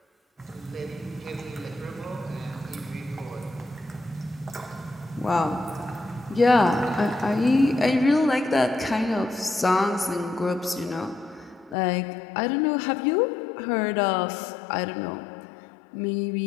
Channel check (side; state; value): right; drops out; at 11.8 s